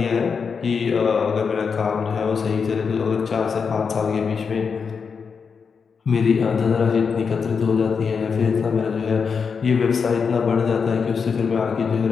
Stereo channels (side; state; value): right; quieter; 5.8 dB